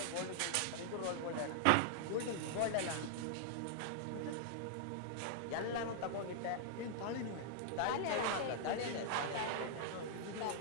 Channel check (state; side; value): different; both; correlation -0.01